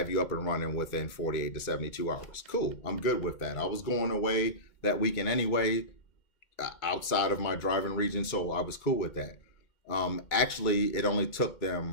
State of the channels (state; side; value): late; right; 2.2 ms